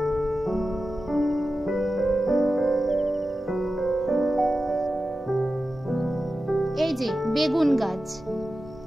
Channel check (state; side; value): normal; both; correlation 0.93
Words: এই যে বেগুন গাছ,